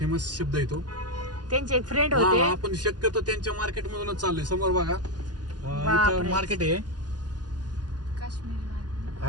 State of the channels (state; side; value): late; left; 0.70 ms